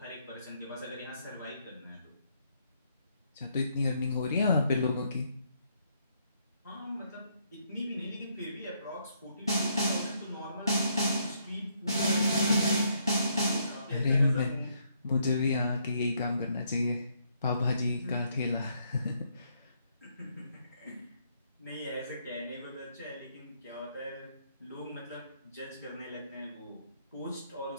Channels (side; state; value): both; inverted; correlation -0.72